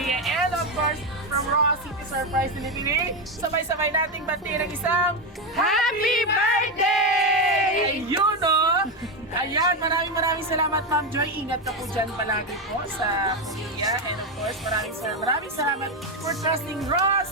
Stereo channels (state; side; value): normal; both; correlation 0.10